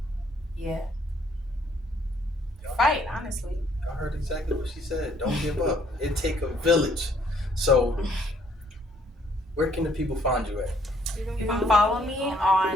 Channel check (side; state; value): both; normal; correlation 0.65